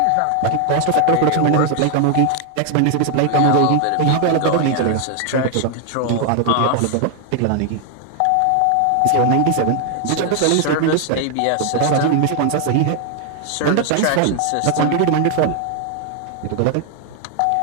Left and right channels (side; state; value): both; different; correlation 0.00